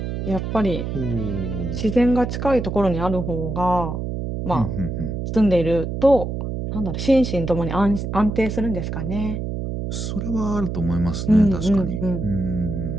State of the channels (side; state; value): right; noise; hum, 4 dB below the sound